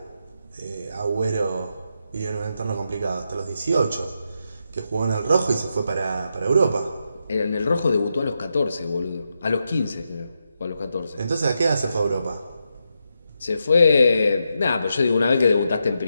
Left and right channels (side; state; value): both; inverted; correlation -0.84